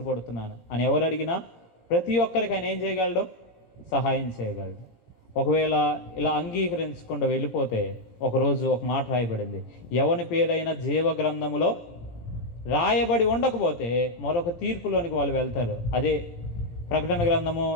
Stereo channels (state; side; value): late; right; 17 ms